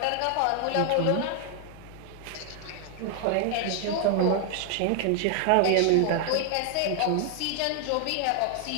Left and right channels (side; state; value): both; different; correlation 0.00